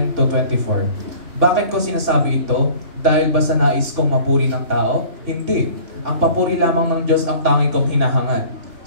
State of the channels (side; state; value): left; late; 3.4 ms